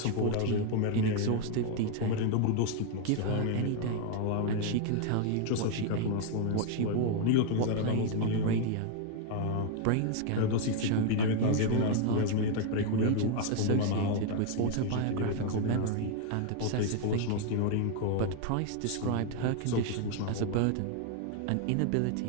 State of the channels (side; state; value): both; different; correlation 0.00